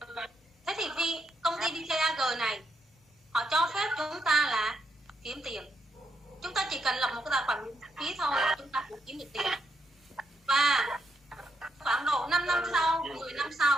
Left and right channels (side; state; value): both; normal; correlation 0.79